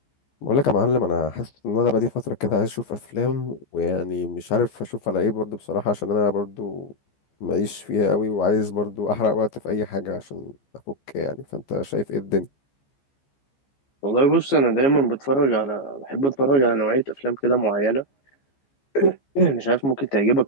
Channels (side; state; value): right; late; 14 ms